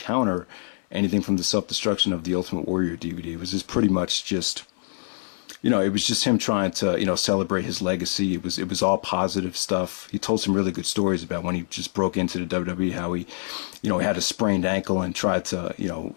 anything from the Self-Destruction of the Ultimate Warrior DVD. It was just pretty much just, it was just him trying to, celebrate his legacy. It was all positive stuff. He told some really good stories about when he just broke into the WWE, how he, he had a sprained ankle and tried to,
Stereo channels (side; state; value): right; silent; 62 dB below the other